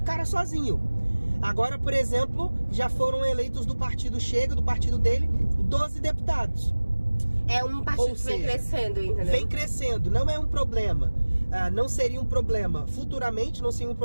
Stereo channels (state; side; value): inverted; both; correlation -1.00